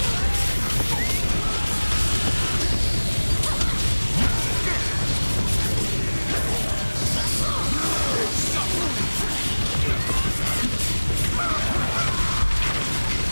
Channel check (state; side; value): inverted; both; correlation -1.00